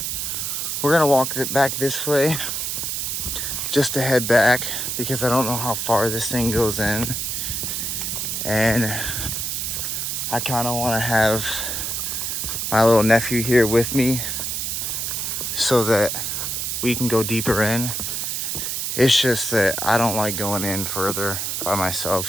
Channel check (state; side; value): noise; right; hiss, 2 dB below the sound